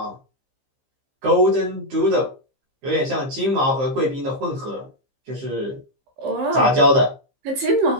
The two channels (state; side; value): late; left; 15 ms